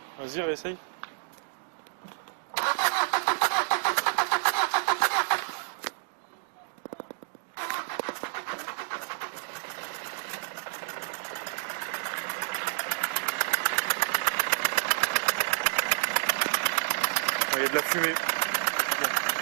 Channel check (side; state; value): left; silent; 57 dB below the other